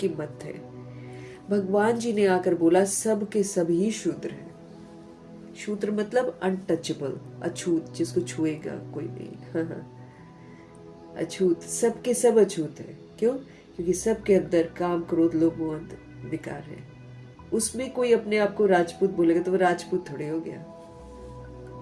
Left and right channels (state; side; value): identical; both; correlation 1.00